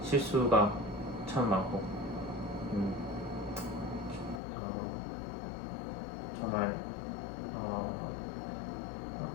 실수가 참 많고 정말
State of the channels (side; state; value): right; drops out; at 4.4 s